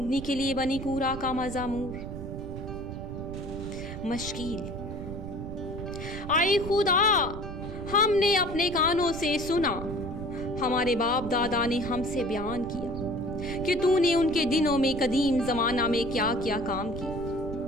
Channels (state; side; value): noise; right; rumble, 9 dB below the sound